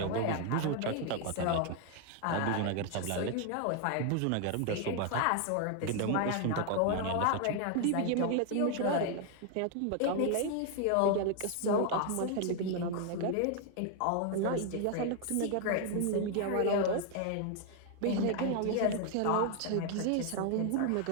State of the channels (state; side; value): different; both; correlation 0.00